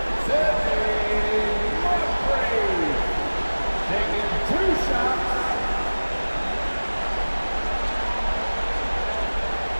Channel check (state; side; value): inverted; both; correlation -1.00